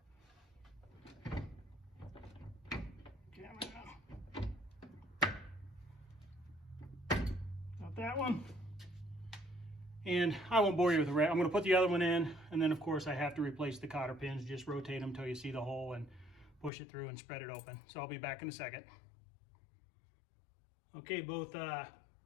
got that one. And I won't bore you with the rest. I'm going to put the other one in, and then of course I have to replace the cotter pins. Just rotate them until you see the hole and push it through and spread it open. So I'll be back in a second. Okay, both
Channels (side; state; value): right; drops out; at 16.7 s